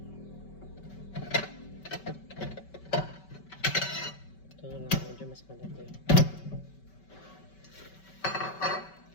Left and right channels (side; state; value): right; late; 5.2 ms